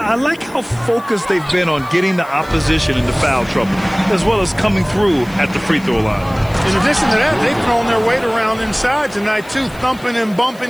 like how focused they've been on getting the opposition into foul trouble, as well as coming through at the free throw line. In addition to that, they've thrown their weight around inside tonight, too, thumping and bumping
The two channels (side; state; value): left; noise; hiss, 24 dB below the sound